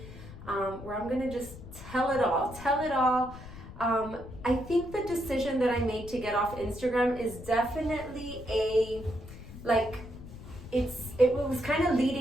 where I'm going to just tell it all. I think the decision that I made to get off Instagram is definitely it was kind of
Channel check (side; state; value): left; noise; rumble, 14 dB below the sound